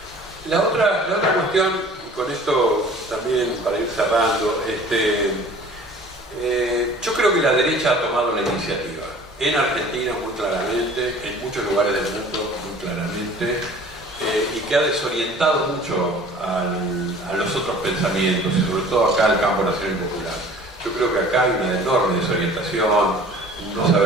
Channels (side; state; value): both; normal; correlation 0.47